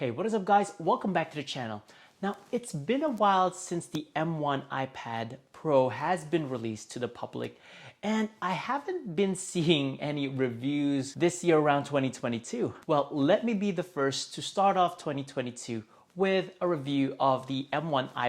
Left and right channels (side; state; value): both; identical; correlation 1.00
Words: Hey, what is up guys? Welcome back to the channel. Now, it's been a while since the M1 iPad Pro has been released to the public, and I haven't been seeing any reviews this year around 2022. Well, let me be the first to start off 2022 with a review of the M1